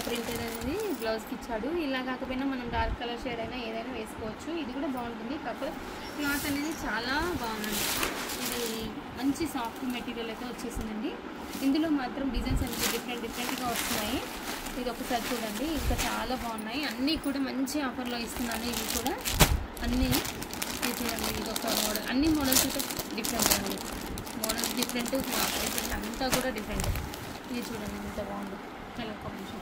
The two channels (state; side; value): identical; both; correlation 1.00